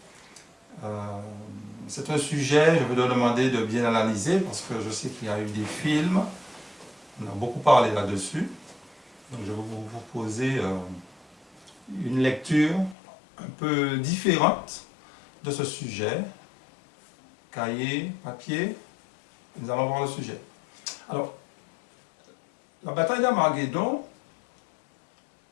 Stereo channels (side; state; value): right; drops out; at 13.0 s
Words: C'est un sujet, je vais te demander de bien analyser, parce que je sais qu'il y a eu des films, on a beaucoup parlé là-dessus. Donc je vais vous proposer une lecture un peu différente de ce sujet. Cahier, papier, nous allons voir le sujet. Alors, la bataille d'Armageddon,